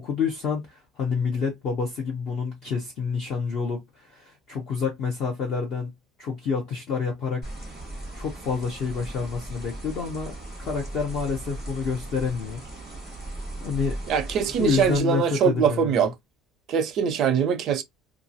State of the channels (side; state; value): both; normal; correlation 0.48